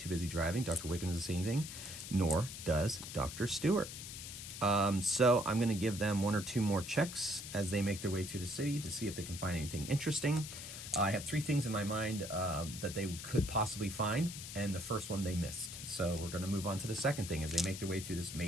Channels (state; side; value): noise; left; hiss, 9 dB below the sound